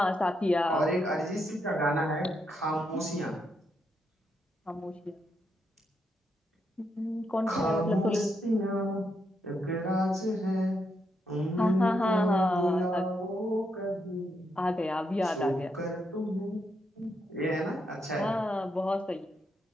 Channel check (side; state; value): both; normal; correlation 0.80